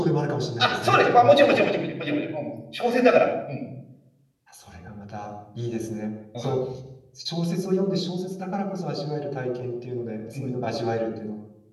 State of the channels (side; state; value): both; identical; correlation 1.00